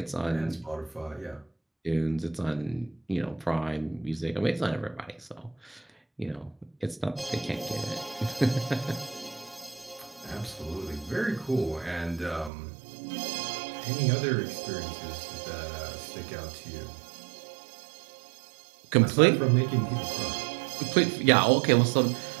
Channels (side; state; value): left; drops out; at 12.5 s